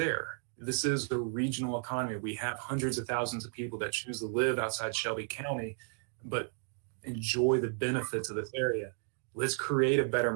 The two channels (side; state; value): left; silent; 55 dB below the other